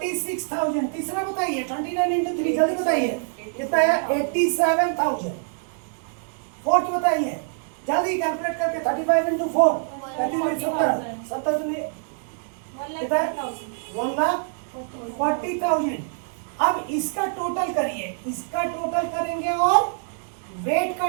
तीसरा बताइए, 29 इंटू 3, जल्दी बताइए, कितना है 87,000। फोर्थ बताइए, जल्दी कैलकुलेट करके, 35 इंटू 4, 70 कितना है 1,40,000। अब इसका टोटल करिए, इसका टोटल करेंगे और वेट का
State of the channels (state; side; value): silent; left; 62 dB below the other